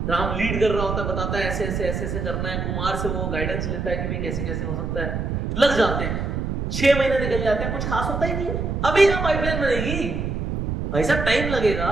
राम लीड कर रहा होता है, बताता है ऐसे ऐसे ऐसे ऐसे करना है, कुमार से वो गाइडेंस लेता है कि भाई कैसे कैसे हो सकता है, लग जाते हैं। 6 महीने निकल जाते हैं, कुछ खास होता ही नहीं है। अभी कहां पाइपलाइन बनेगी भाई साहब, टाइम लगेगा,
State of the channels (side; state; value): right; noise; rumble, 2 dB below the sound